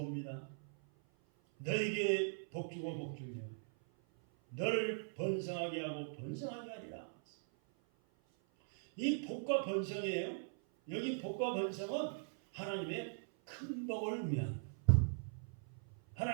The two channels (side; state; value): left; silent; 51 dB below the other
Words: 너에게 복 주고 복 주며 너를 번성하게 하고 번성하게 하리라. 이 복과 번성이에요. 여기 복과 번성은 하나님의 큰 복을 의미합니다.